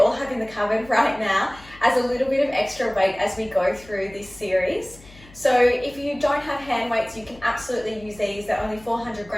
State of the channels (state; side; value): noise; left; hum, 22 dB below the sound